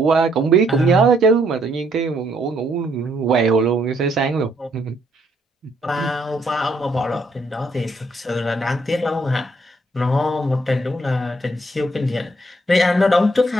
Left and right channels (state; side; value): normal; both; correlation 0.70